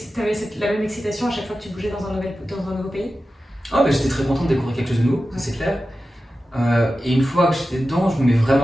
la même excitation à chaque fois que tu bougeais dans un nouveau pays? J'étais très content de découvrir quelque chose de nouveau, ça c'est clair. Et une fois que j'étais dedans, je me mets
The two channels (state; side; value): normal; both; correlation 0.93